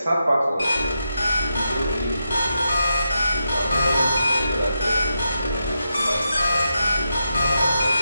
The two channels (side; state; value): both; inverted; correlation -0.86